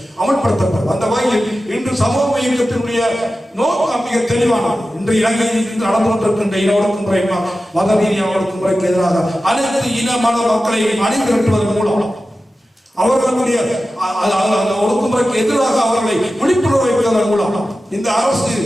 அமல்படுத்தப்படும். அந்த வகையில் இன்று சமூக இயக்கத்தினுடைய நோக்கம் மிக தெளிவானது. இன்று இலங்கையில் நடந்து கொண்டிருக்கின்ற இன ஒடுக்குமுறை மத ரீதியான ஒடுக்குமுறைக்கு எதிராக அனைத்து இன மத மக்களை அணிதிரட்டுவதன் மூலம் அவர்களுடைய ஒடுக்குமுறைக்கு எதிராக அவர்களை விழிப்புணர்வு வைப்பதன் மூலம் இந்த அரசு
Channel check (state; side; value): normal; both; correlation 0.94